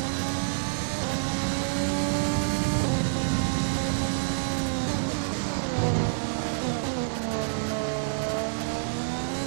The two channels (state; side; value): silent; left; digital silence